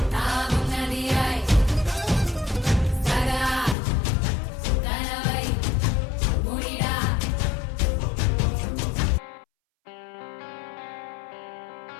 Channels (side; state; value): right; drops out; at 3.8 s